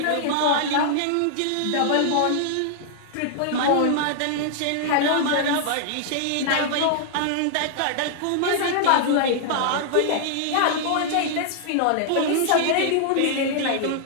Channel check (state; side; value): different; both; correlation -0.01